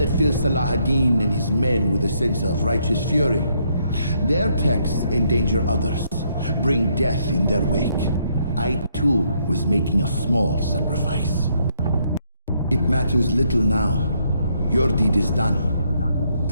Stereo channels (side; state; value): both; inverted; correlation -0.73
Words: fill Salah ad-Din and his men with a sense of righteous fury? Their texts endanger others, bring death in their wake. I too was making a small sacrifice. It matters little now. Your deed is done,